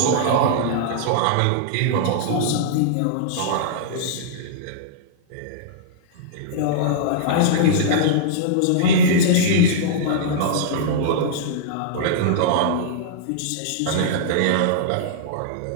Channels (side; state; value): both; different; correlation -0.02